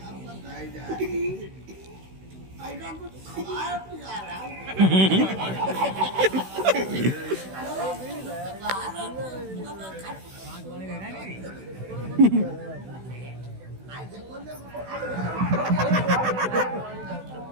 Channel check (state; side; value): late; left; 16 ms